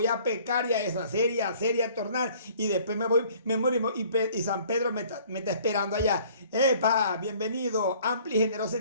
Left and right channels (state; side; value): inverted; both; correlation -0.55